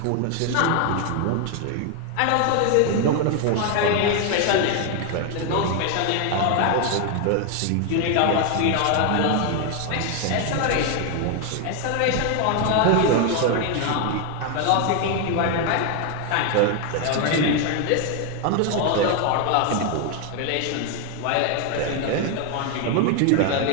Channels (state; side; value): different; both; correlation 0.01